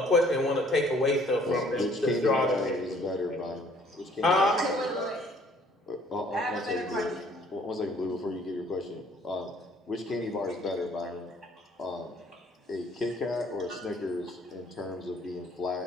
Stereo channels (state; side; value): normal; both; correlation 0.59